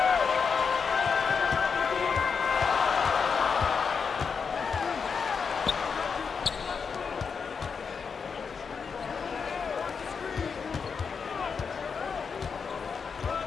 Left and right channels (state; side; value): quieter; right; 5.8 dB